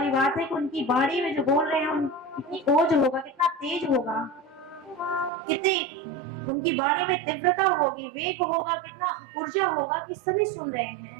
बात है कि उनकी वाणी में जो बोल रहे हैं कितनी ओज होगा, कितना तेज होगा, कितनी उनकी वाणी में तीव्रता होगी, वेग होगा, कितना ऊर्जा होगा कि सभी सुन रहे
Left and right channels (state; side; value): drops out; left; at 5.3 s